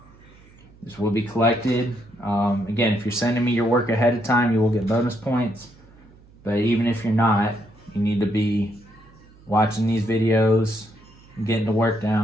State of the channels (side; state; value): right; noise; hum, 26 dB below the sound